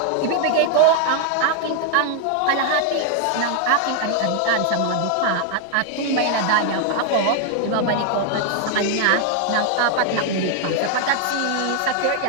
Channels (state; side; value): different; both; correlation 0.00